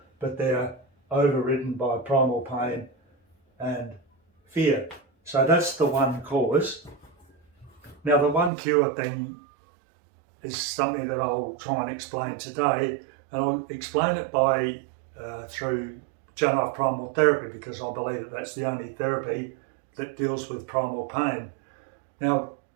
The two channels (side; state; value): left; drops out; at 8.5 s